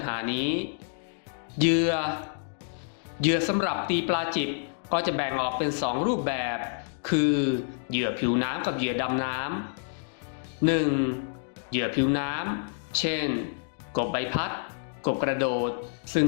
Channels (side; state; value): right; silent; digital silence